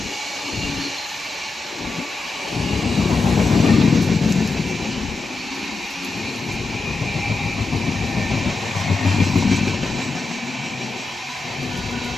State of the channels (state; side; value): quieter; right; 3.6 dB